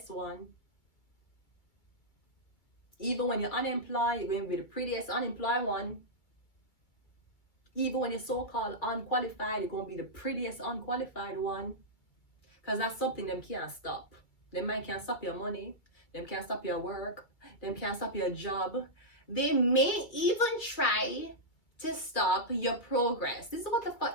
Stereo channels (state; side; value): late; right; 2.1 ms